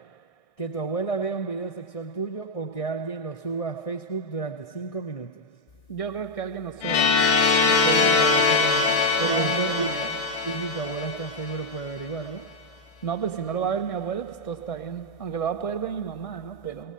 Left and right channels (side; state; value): right; late; 1.6 ms